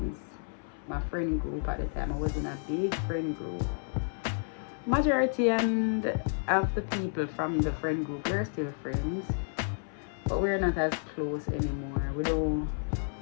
My friend group at the time. I was in a big friend group. Majority and of the people from the friend group, we're still friends. But we're not as close anymore. We don't.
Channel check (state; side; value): silent; right; 57 dB below the other